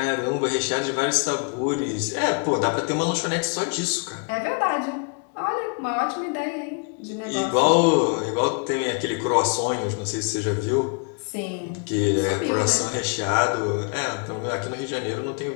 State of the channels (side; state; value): right; quieter; 37.4 dB